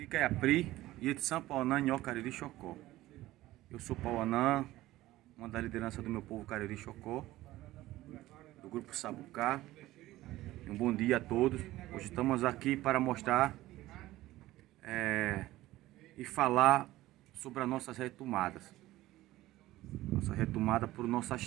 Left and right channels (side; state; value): left; quieter; 16.4 dB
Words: Caiapri, Ietição Pauanã, Nho Cariri Chocó. Eu sou Pauanã, uma da liderança do meu povo Cariri Chocó, do grupo Sabucá. Um bom dia a todos. Hoje estamos aqui para mostrar e falar sobre as nossas retomadas. Nossa retomada por